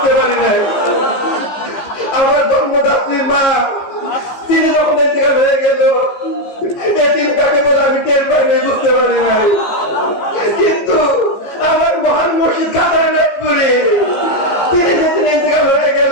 পারি নাই। আমার জন্মদাত্রী মা তিনি যখন ইন্তেকাল হয়ে গেল, এদিন তাকে বলে আমি টের পাইনি, বুঝতে পারি নাই। কিন্তু আমার মহান মুর্শিদ খাজা এনায়তপুরি তিনি যেদিন ইন্তেকাল হয়ে গেলেন,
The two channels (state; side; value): late; right; 15 ms